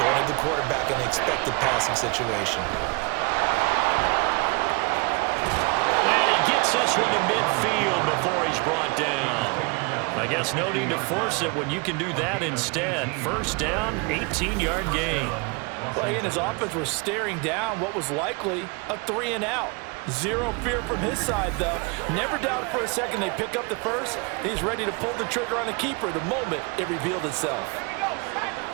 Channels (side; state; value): left; quieter; 30.2 dB